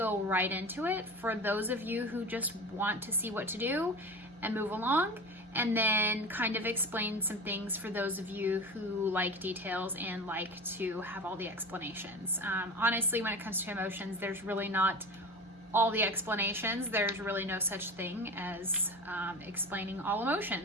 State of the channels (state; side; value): normal; both; correlation 0.31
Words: right into it for those of you who just want to see what to do and move along, and then kind of explain some things for those of you who like details and like to have all the explanations. Honestly, when it comes to emotions, there's really not all the explanations. There's really no such thing as explaining all